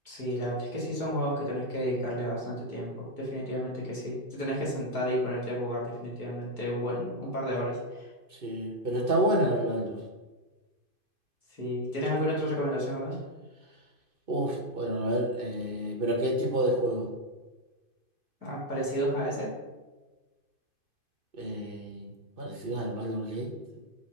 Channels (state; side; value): late; left; 2.6 ms